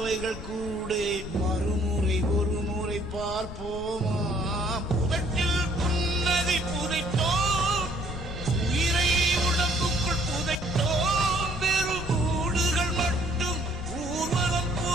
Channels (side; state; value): left; noise; rumble, 12 dB below the sound